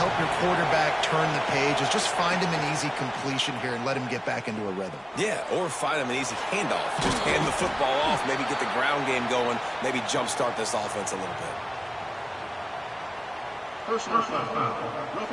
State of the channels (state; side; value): identical; both; correlation 1.00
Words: your quarterback turn the page is just find him an easy completion here and let him get back into a rhythm. Yeah, or find him an easy handoff. Just hand the football off, maybe get the ground game going, maybe jumpstart this offense a little bit. Personal foul.